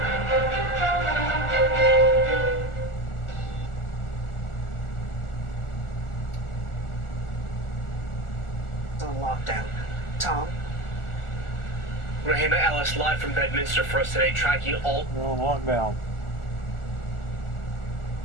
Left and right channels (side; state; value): right; late; 1.4 ms